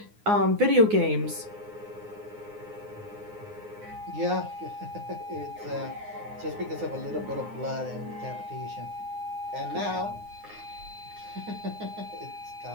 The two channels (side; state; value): left; late; 9.6 ms